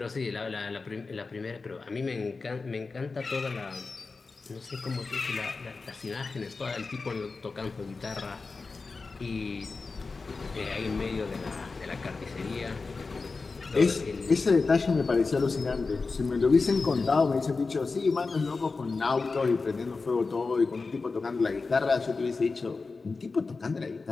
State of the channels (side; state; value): right; quieter; 4.1 dB